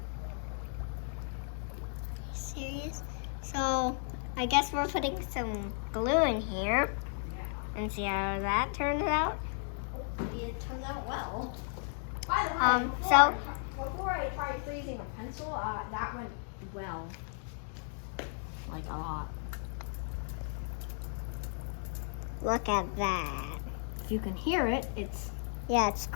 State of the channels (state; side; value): silent; right; 55 dB below the other